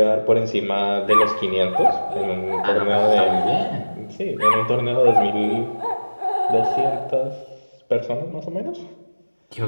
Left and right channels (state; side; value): inverted; both; correlation -1.00